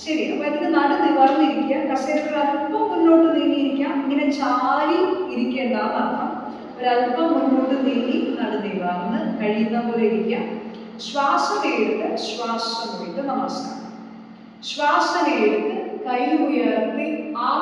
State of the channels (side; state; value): both; identical; correlation 1.00